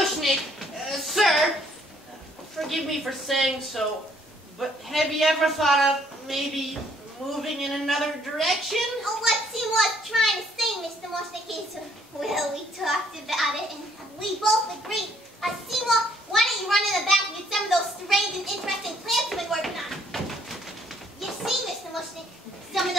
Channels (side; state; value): both; normal; correlation 0.65